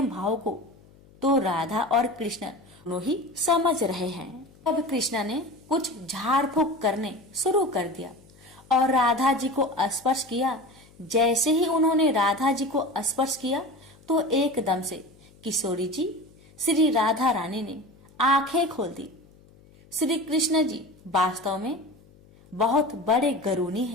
भाव को तो राधा और कृष्ण दोनों ही समझ रहे हैं। अब कृष्ण ने कुछ झाड़ फूक करने शुरू कर दिया और राधा जी को स्पर्श किया। जैसे ही उन्होंने राधा जी को स्पर्श किया तो एकदम से किशोरी जी श्री राधा रानी ने आंखें खोल दी। श्री कृष्ण जी वास्तव में बहुत बड़े गरुणी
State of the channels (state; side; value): noise; left; hum, 26 dB below the sound